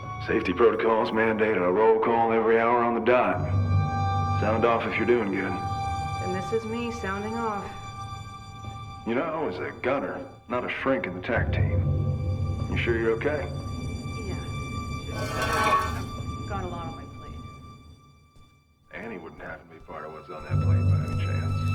Safety protocols mandate a roll call every hour on the dot. Sound off if you're doing good. And this is me sounding off. You know, I was a gunner, not a shrink in the TAC team. You sure you're okay? Yeah, it's just got a lot on my plate. Annie wouldn't happen to be part of what's on that plate by any chance,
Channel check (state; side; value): identical; both; correlation 1.00